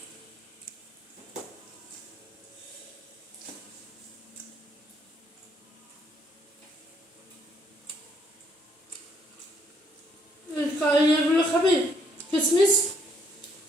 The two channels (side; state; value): both; normal; correlation 0.68